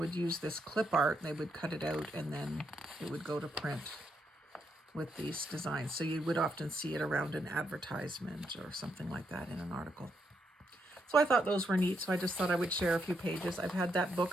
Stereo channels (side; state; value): both; normal; correlation 0.79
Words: use this clip art. They would cut it out and then it would go to print with these designs. So you would often see it around an advertisement or something like that in an article. So I thought those were neat, so I just thought I would share a few pages. I've had that